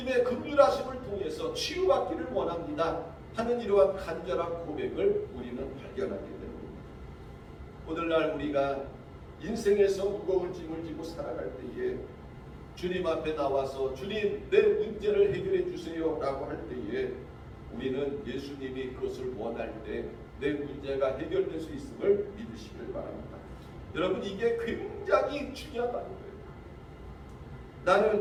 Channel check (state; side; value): identical; both; correlation 1.00